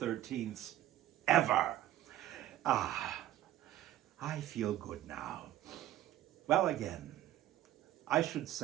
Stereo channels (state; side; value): quieter; left; 13.5 dB